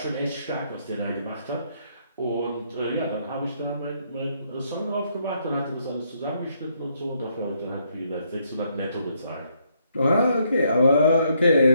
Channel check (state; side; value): inverted; both; correlation -0.72